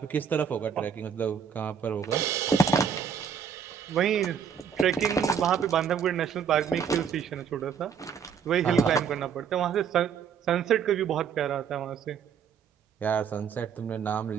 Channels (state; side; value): quieter; left; 7.2 dB